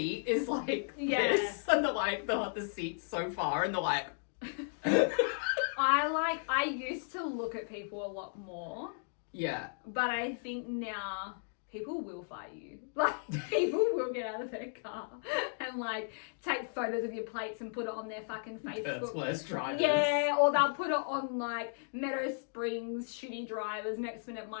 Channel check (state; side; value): silent; right; digital silence